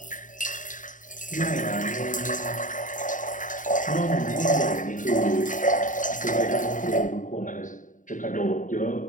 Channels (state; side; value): late; right; 0.38 ms